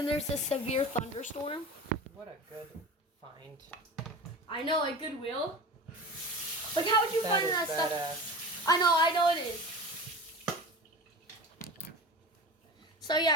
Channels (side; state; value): both; normal; correlation 0.32